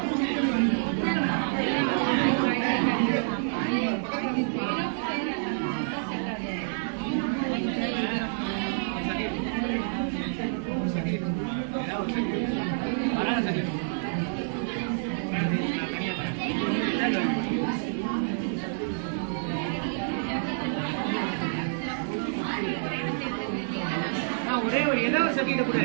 ஒரே ஒரு ஏதோ ஒரு சர்டிஃபிகேட் கூட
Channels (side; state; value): left; silent; digital silence